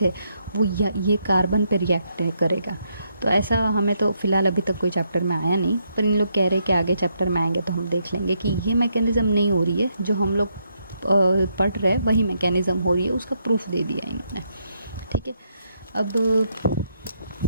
है वो ये कार्बन पे रिएक्ट करेगा। तो ऐसा हमें तो फ़िलहाल अभी तक कोई चैप्टर में आया नहीं, पर इन लोग कह रहे हैं कि आगे चैप्टर में आएंगे तो हम देख लेंगे कि ये मैकेनिज़्म नहीं हो रही है, जो हम लोग पढ़ रहे हैं वही मैकेनिज़्म हो रही है, उसका प्रूफ दे दिया इन्होंने। ठीक है, अब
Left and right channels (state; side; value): inverted; both; correlation -0.77